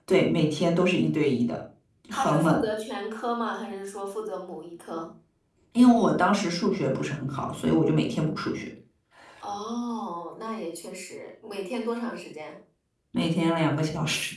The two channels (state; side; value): identical; both; correlation 1.00